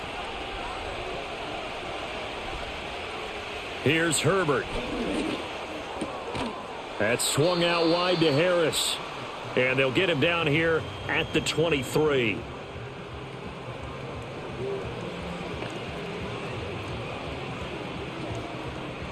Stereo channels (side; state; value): both; identical; correlation 1.00